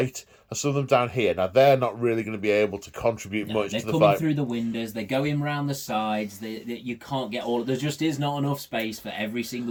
and some of them down here. Now, they're not really going to be able to contribute much to the fight. They're coming through the windows, they're going round the sides, you can't get all... There just is not enough space for every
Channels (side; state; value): both; identical; correlation 1.00